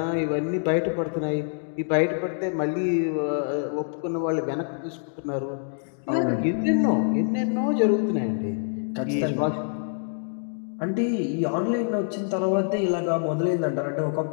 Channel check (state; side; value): silent; right; digital silence